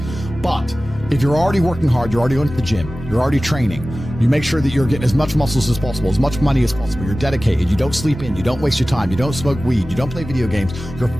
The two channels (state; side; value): normal; both; correlation 0.96